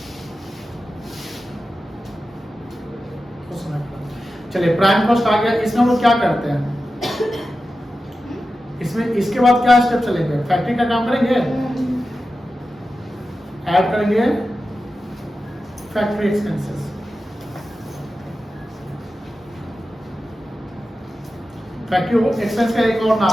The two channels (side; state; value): both; normal; correlation 0.92